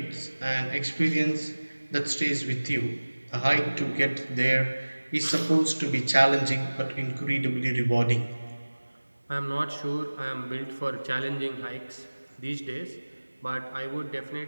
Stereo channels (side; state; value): both; inverted; correlation -1.00